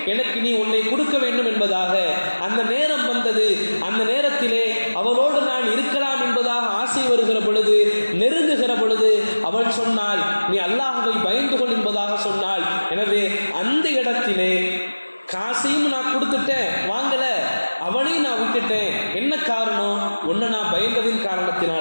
எனக்கு நீ உன்னை கொடுக்க வேண்டும் என்பதாக. அந்த நேரம் வந்தது. அந்த நேரத்திலே அவளோடு நான் இருக்கலாம் என்பதாக ஆசை வருகிற பொழுது, நெருங்குகிற பொழுது அவள் சொன்னாள், நீ அல்லாஹ்வை பயந்து கொள் என்பதாக சொன்னாள். எனவே அந்த இடத்திலே காசையும் நான் கொடுத்துட்டேன், வாங்கல, அவளையும் நான் விட்டுட்டேன். என்ன காரணம்? உன்னை நான் பயந்ததின்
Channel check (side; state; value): both; inverted; correlation -1.00